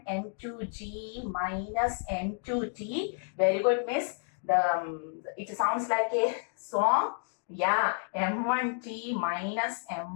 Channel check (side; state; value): right; silent; 57 dB below the other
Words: m2g minus m2t. Very good, miss. It sounds like a song. Yeah, m1t minus